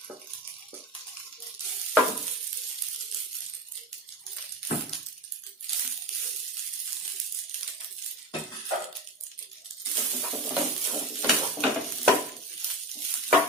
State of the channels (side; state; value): both; normal; correlation 0.27